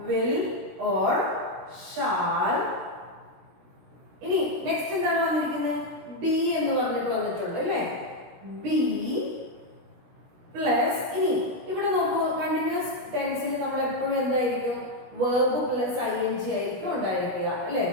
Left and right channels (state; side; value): late; left; 17 ms